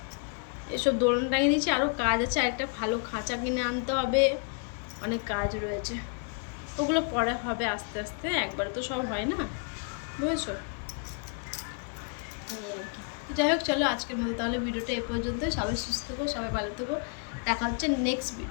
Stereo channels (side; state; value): right; quieter; 38.9 dB